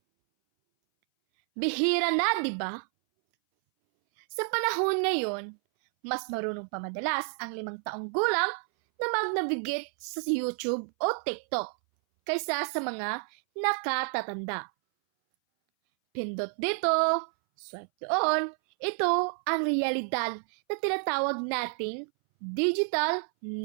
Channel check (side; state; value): left; silent; 58 dB below the other